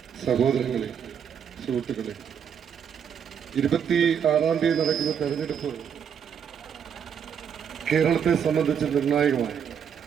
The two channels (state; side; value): quieter; left; 7.8 dB